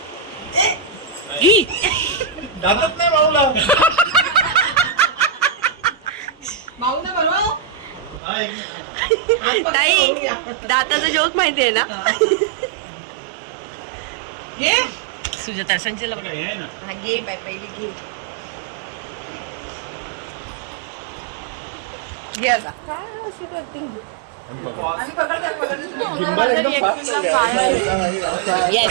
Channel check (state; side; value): drops out; left; at 8.2 s